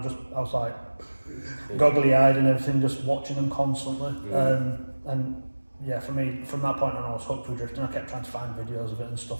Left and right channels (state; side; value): inverted; both; correlation -1.00